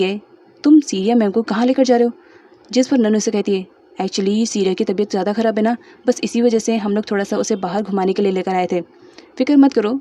तुम सीरिया मैम को कहाँ लेकर जा रहे हो? जिस पर नन्नू से कहती है एक्चुअली सीरिया की तबीयत ज़्यादा ख़राब है ना, बस इसी वजह से हम लोग थोड़ा सा उसे बाहर घुमाने के लिए लेकर आए थे। फिक्र मत करो,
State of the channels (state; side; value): identical; both; correlation 1.00